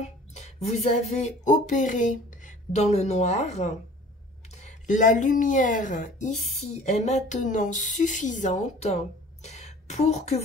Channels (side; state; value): both; normal; correlation 0.47